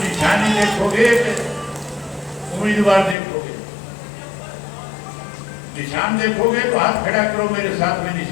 देखोगे, उम्मीदवार देखोगे। निशान देखोगे तो हाथ खड़ा करो, मेरे साथ में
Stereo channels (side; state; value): right; drops out; at 3.2 s